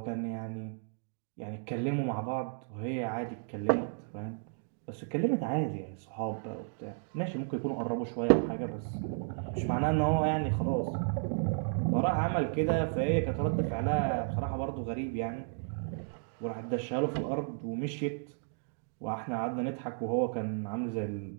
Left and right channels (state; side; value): silent; left; digital silence